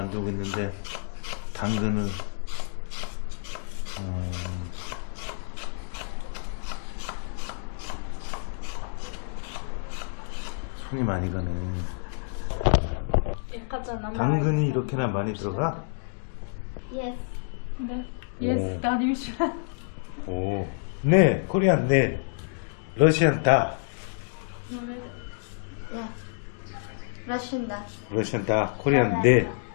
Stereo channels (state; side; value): silent; right; digital silence